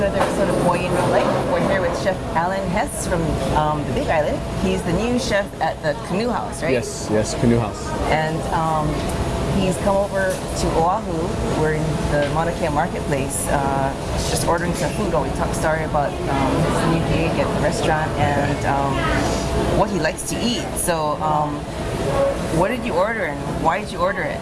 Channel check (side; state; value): both; identical; correlation 1.00